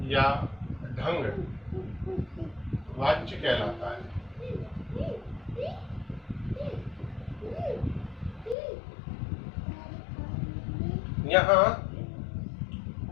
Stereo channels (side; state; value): right; drops out; at 8.6 s